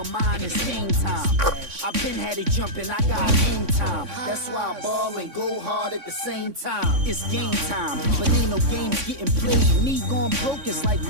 mind, it's game time. I've been had it jumping, I got hang time. That's why I ball and go hard at the same time. It's game time, but ain't no games getting played. Me going broke is like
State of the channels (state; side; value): late; left; 3.6 ms